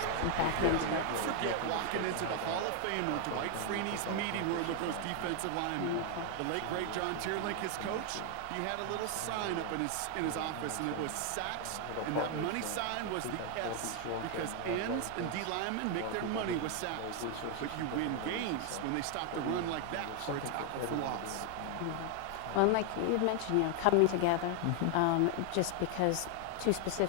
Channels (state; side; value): different; both; correlation 0.00